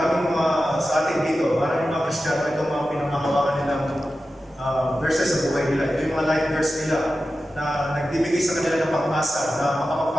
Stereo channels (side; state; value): both; normal; correlation 0.93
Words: mga sa atin dito, maraming mga Kristiyano, itong mga pinamahawakan nilang verses sa buhay nila. Ito yung mga life verse nila na nagbibigay sa kanila ng pag-asa na